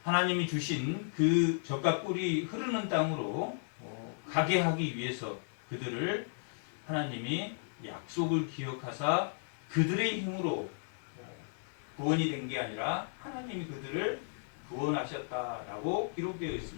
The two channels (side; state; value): right; silent; digital silence